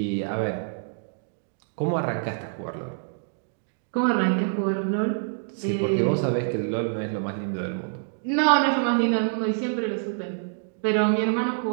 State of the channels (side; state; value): left; silent; digital silence